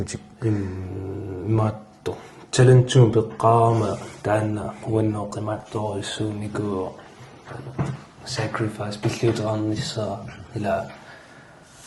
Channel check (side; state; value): both; identical; correlation 1.00